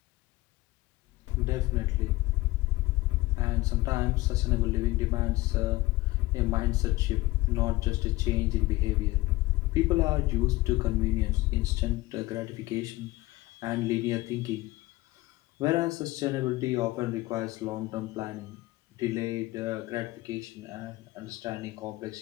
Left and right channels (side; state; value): right; quieter; 19.3 dB